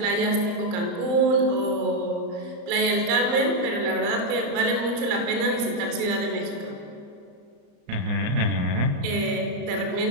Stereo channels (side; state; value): left; late; 34 ms